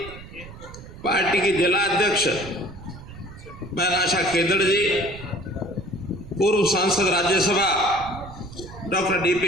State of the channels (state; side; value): noise; right; rumble, 16 dB below the sound